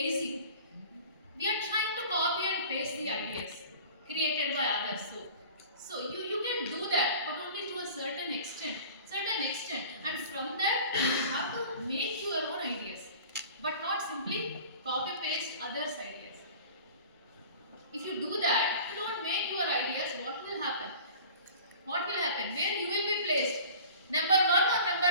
We are trying to copy and paste the ideas created by others. So you can do that, but only to a certain extent. And from that, you have to make your own ideas, but not simply copy paste others' ideas. If you do that, you don't make your ideas, what will happen? What will happen? Where you will be placed? Number 1 or number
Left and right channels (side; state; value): both; inverted; correlation -0.42